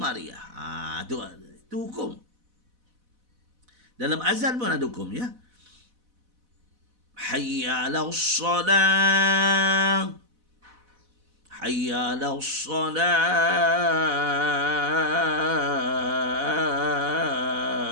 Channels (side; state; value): left; late; 4.0 ms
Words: Itu hukum. Dalam azan pun ada hukum, ya. Hayya 'alas salah. Hayya 'alas salah.